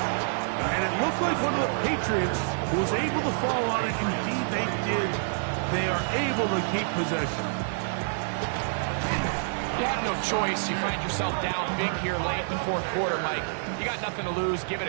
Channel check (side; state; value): left; silent; digital silence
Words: And it looked like one of the Patriots was able to fall on it. Indeed, they did. They are able to keep possession. You have no choice. You find yourself down big here late in the 4th quarter, Mike. You got nothing to lose. Give it